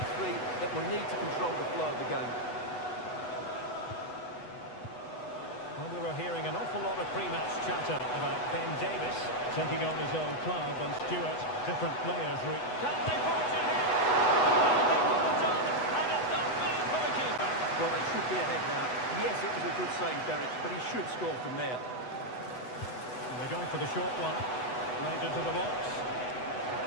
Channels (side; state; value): right; late; 8.1 ms